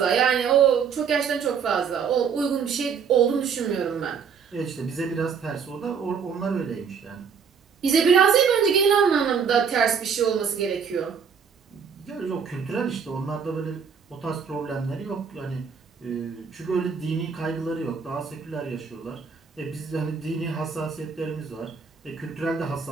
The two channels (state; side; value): quieter; left; 6.5 dB